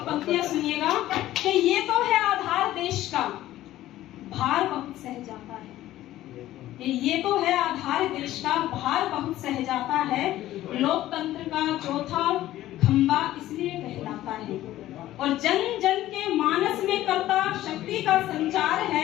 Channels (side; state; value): right; quieter; 14.5 dB